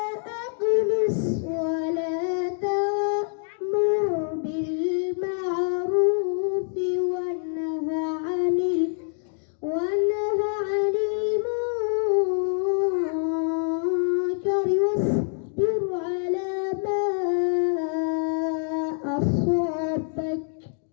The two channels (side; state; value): right; silent; digital silence